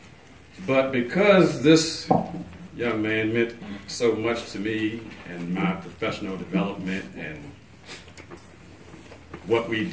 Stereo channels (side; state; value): both; identical; correlation 1.00